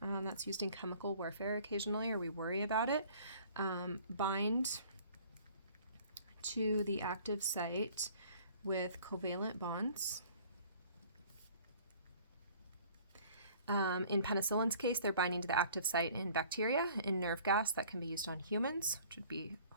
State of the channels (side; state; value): both; inverted; correlation -0.52